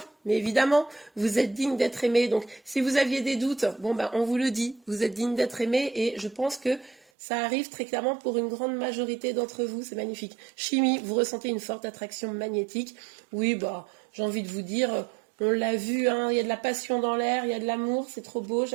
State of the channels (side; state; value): left; drops out; at 7.0 s